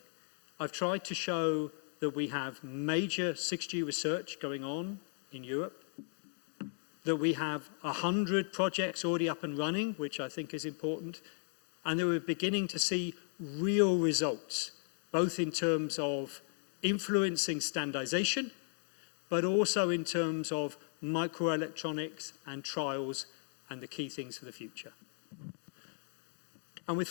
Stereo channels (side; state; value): right; silent; 54 dB below the other